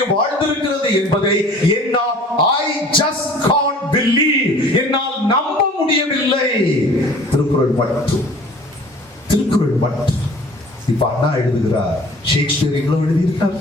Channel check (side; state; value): both; normal; correlation 0.48